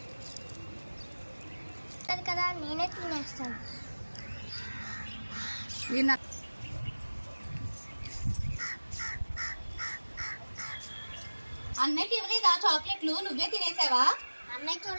కదా నేనే తినేస్తాను. అన్నయ్యకి ఇవ్వలేదా చాక్లెట్లు? నువ్వే తినేసావా? అన్నయ్య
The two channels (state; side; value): inverted; both; correlation -1.00